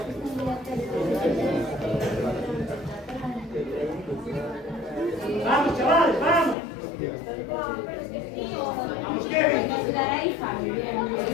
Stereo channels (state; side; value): drops out; right; at 6.6 s